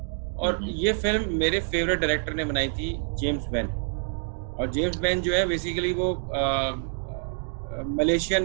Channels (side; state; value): left; silent; 60 dB below the other